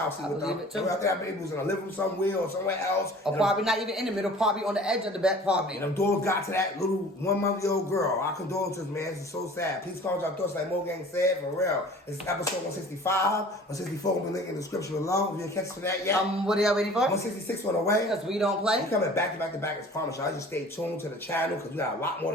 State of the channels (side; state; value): both; normal; correlation 0.46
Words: sleep with them. I think that baby was in a living room somewhere or somewhere else. Or probably not even in the middle, probably on the edge of the bed, probably. And them dogs got to that little 1 month-old girl. Our condolences, man. This is so sad. Please comment your thoughts like Mo Gang said, for real. It's episode 165. 164 will be linked in the description below. If you didn't catch it for that yet. What are y'all waiting for? 166 on the way. Because we don't play. We coming back to back as promised. Y'all just stay tuned to the channel because we got a lot more